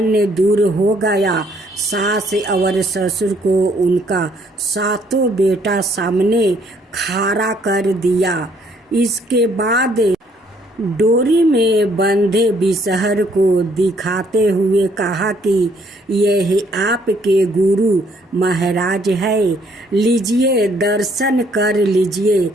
दूर हो गया। सास और ससुर को उनका 7 बेटा सामने खड़ा कर दिया। इसके बाद डोरी में बंधे बिसहर को दिखाते हुए कहा कि यह आपके गुरु महाराज है, लीजिए दर्शन कर लीजिए।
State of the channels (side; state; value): both; normal; correlation 0.66